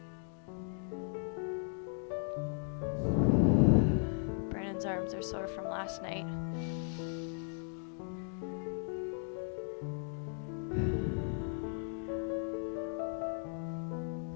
Brandon's arms are sore from last night.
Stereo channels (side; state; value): right; silent; 53 dB below the other